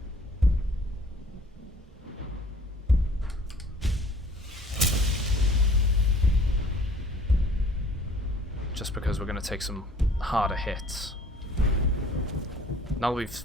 Just because we're going to take some harder hits. Now that we've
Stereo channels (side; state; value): both; normal; correlation 0.53